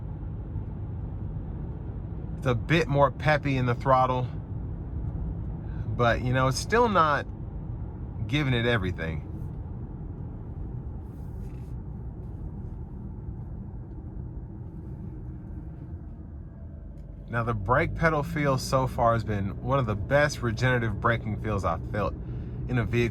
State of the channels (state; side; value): identical; both; correlation 1.00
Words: It's a bit more peppy in the throttle. But, you know, it's still not giving it everything. Now, the brake pedal feel so far has been one of the best regenerative braking feels I've felt in a